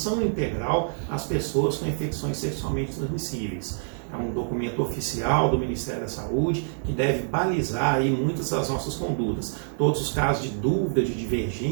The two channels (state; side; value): silent; left; 61 dB below the other